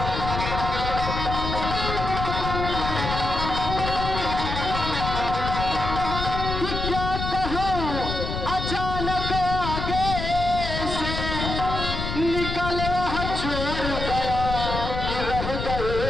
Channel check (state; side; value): noise; left; rumble, 4 dB below the sound